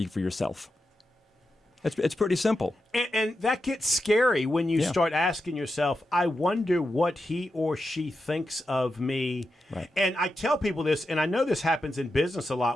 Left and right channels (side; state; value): both; normal; correlation 0.88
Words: for yourself. It's pretty simple. And that gets scary when you start asking yourself, I wonder what he or she thinks of me. Right. And I tell people this, and I know this happens in business a